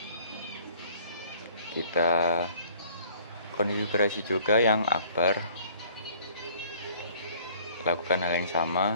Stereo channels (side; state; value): both; inverted; correlation -0.55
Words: Kita konfigurasi juga yang akbar. Lakukan hal yang